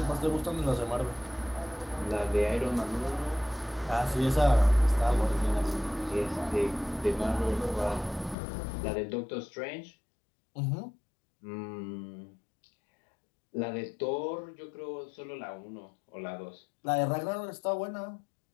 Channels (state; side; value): drops out; right; at 8.3 s